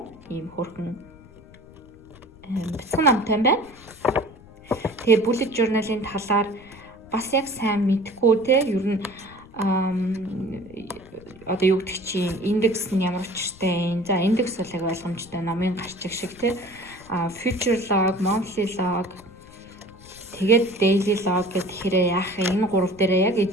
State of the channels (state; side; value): noise; left; rumble, 22 dB below the sound